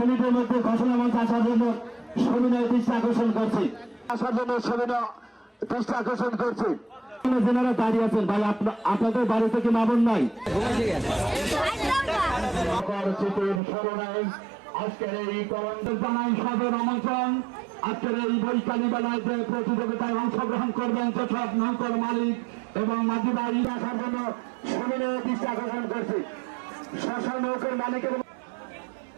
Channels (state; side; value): drops out; left; at 13.6 s